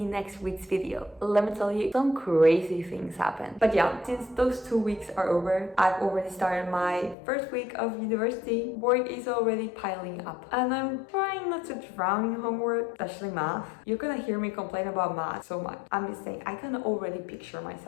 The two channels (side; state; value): right; drops out; at 7.2 s